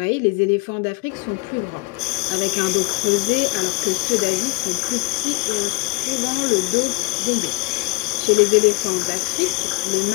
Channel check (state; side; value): quieter; right; 27.4 dB